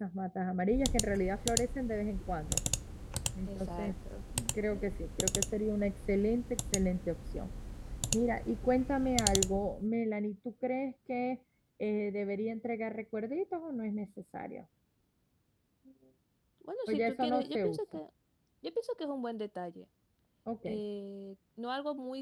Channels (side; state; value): both; identical; correlation 1.00